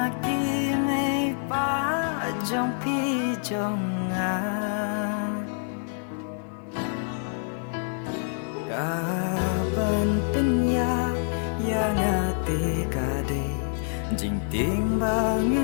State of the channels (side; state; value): right; silent; digital silence